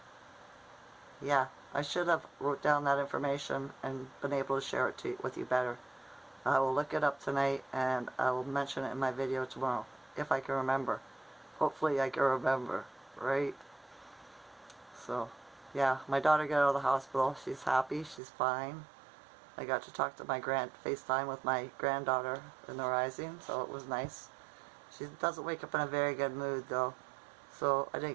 yeah. I should have wrote down that information and been able to share it with you better. I will look it up tonight and I will mention it in my video tomorrow. If I can remember. Hopefully I can remember. Right? So, yeah. My daughter got out of the hospital. She's happy. She's fine. I got to talk to my FaceTime with my granddaughter in the rising, so it was nice. She doesn't wake up in a very good mood, though, so I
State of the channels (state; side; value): drops out; left; at 18.2 s